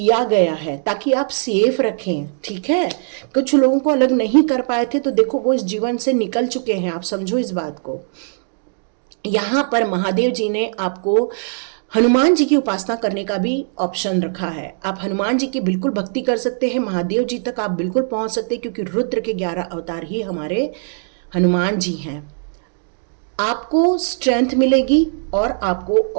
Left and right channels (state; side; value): silent; left; digital silence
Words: गया है ताकि आप सेफ रखें। ठीक है, कुछ लोगों को अलग नहीं कर पाए थे, तो देखो वो इस जीवन से निकल चुके हैं, आप समझो इस बात को। यहाँ पर महादेव जी ने आपको हनुमान जी की उपासना करने का भी ऑप्शन रखा है। आप हनुमान जी की बिल्कुल भक्ति कर सकते हैं, महादेव जी तक आप बिल्कुल पहुंच सकते हैं, क्योंकि रुद्र के 11 अवतार ही हमारे हनुमान जी हैं। आपको स्ट्रेंथ मिलेगी और आपको